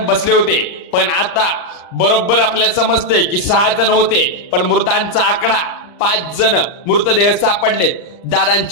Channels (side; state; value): right; late; 39 ms